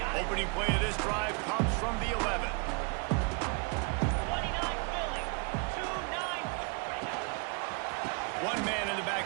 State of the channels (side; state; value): left; quieter; 35.0 dB